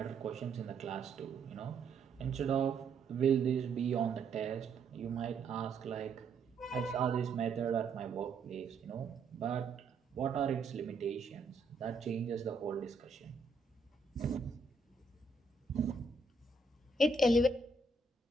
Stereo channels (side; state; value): left; quieter; 3.8 dB